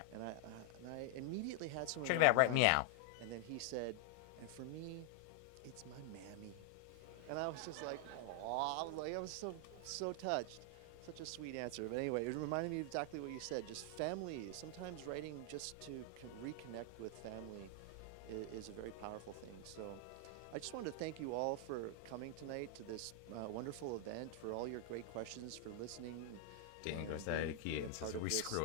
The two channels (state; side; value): different; both; correlation 0.00